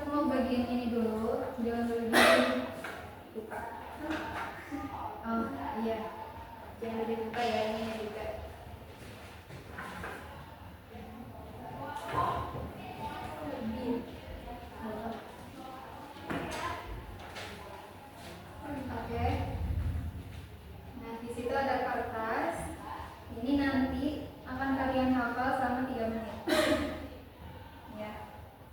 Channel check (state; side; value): identical; both; correlation 1.00